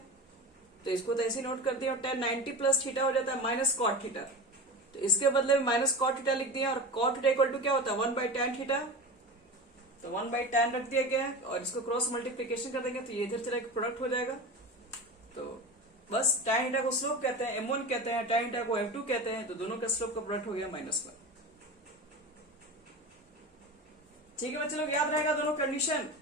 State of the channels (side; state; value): both; normal; correlation 0.29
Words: तो इसको तो ऐसे नोट कर दिया और tan 90 प्लस थीटा हो जाता है माइनस कॉट थीटा। तो इसके बदले में माइनस कॉट थीटा लिख दिया और कॉट थीटा इक्वल टू क्या होता है 1/tan थीटा। तो 1/tan रख दिया गया है और इसको क्रॉस मल्टीप्लीकेशन कर देंगे तो ये इधर चला के प्रोडक्ट हो जाएगा। तो बस tan थीटा को स्लोप कहते हैं, m1 कहते हैं, tan थीटा को m2 कहते हैं। तो दोनों का स्लोप का प्रोडक्ट हो गया -1। ठीक है बच्चे लोग, याद रहेगा दोनों कंडीशन।